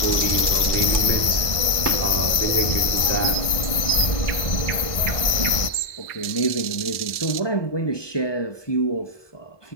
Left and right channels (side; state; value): right; late; 1.5 ms